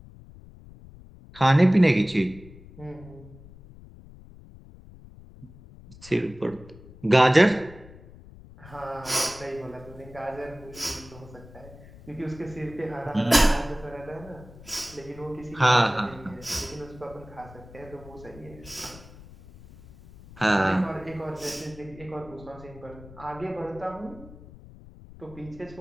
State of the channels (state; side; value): noise; left; rumble, 19 dB below the sound